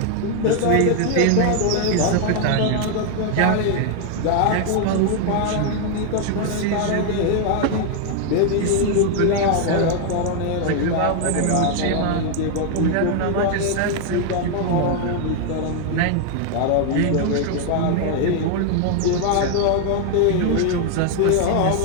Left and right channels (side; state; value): both; different; correlation 0.00